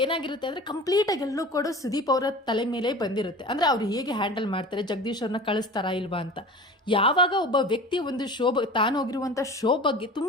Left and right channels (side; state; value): both; normal; correlation 0.37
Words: ಏನಾಗಿರುತ್ತೆ ಅಂದರೆ ಕಂಪ್ಲೀಟಾಗಿ ಎಲ್ಲೂ ಕೂಡ ಸುದೀಪ್ ಅವರ ತಲೆ ಮೇಲೆ ಬಂದಿರುತ್ತೆ. ಅಂದರೆ ಅವ್ರು ಹೇಗೆ ಹ್ಯಾಂಡಲ್ ಮಾಡ್ತಾರೆ, ಜಗದೀಶ್ ಅವ್ರನ್ನ ಕಳಿಸ್ತಾರಾ ಇಲ್ವಾ ಅಂತ. ಯಾವಾಗ ಒಬ್ಬ ವ್ಯಕ್ತಿ ಒಂದು ತಾನು ಹೋಗಿರುವಂಥ ಶೋ ಬಗ್ಗೆ